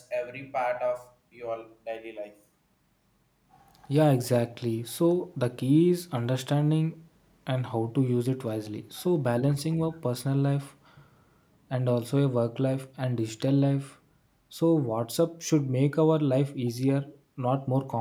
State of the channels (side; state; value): both; identical; correlation 1.00